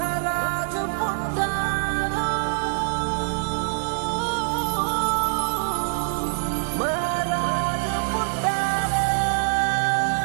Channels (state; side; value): silent; left; digital silence